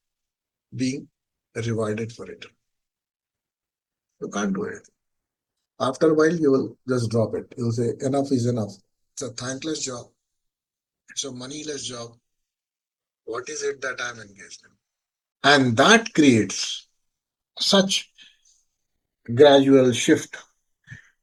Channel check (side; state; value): both; identical; correlation 1.00